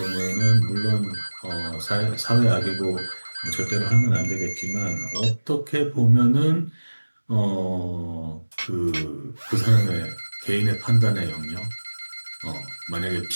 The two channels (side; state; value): both; inverted; correlation -1.00